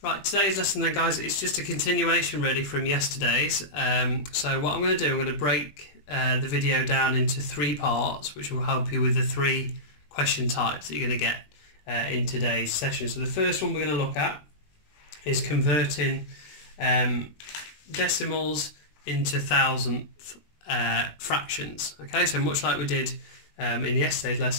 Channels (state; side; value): late; right; 20 ms